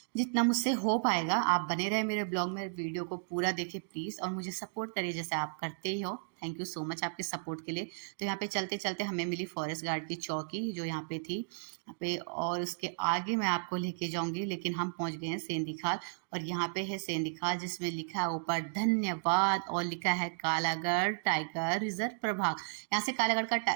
जितना मुझसे हो पाएगा। आप बने रहे मेरे ब्लॉग में, वीडियो को पूरा देखें प्लीज़, और मुझे सपोर्ट करिए जैसे आप करते ही हो। थैंक यू सो मच आपके सपोर्ट के लिए। तो यहाँ पे चलते चलते हमें मिली फॉरेस्ट गार्ड की चौकी जो यहाँ पे थी यहाँ पे, और उसके आगे मैं आपको लेके जाऊंगी, लेकिन हम पहुंच गए हैं सेंधी खाल। और यहाँ पे है सेंधी खाल जिसमें लिखा है ऊपर धन्यवाद और लिखा है कालागढ़ टाइगर रिजर्व प्रभाग। यहाँ से कालागढ़ का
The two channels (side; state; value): left; silent; digital silence